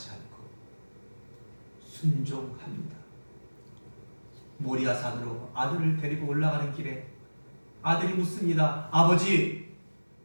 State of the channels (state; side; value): inverted; both; correlation -1.00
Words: 않고 순종합니다. 모리아산으로 아들을 데리고 올라가는 길에 아들이 묻습니다. 아버지,